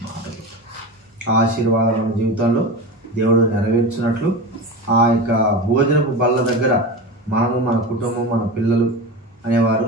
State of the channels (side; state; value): both; normal; correlation 0.26